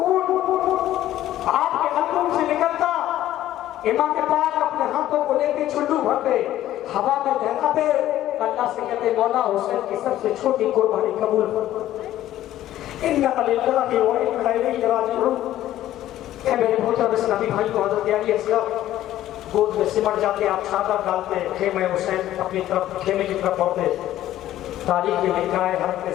آپ کے حلقوم سے نکلتا، امام پاک اپنے ہاتھوں کو لے کے چھلو بھرتے، ہوا میں دہراتے، اللہ سے کہتے مولا حسین کی سب سے چھوٹی قربانی قبول کر۔ اِنَّا لِلَّهِ وَإِنَّا إِلَيْهِ راجعون۔ اے میرے بھوٹا بس نبی بھائی کو حضرت علی اصغر گود میں سمٹ جاتے، آپ چادر ڈالتے، خیمہ حسین اپنی طرف خیمے کی طرف بڑھتے۔ تاریخ میں لکھا ہے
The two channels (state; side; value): quieter; right; 13.4 dB